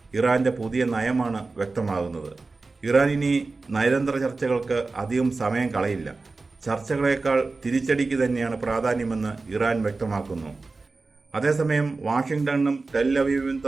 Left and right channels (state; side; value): quieter; left; 3.7 dB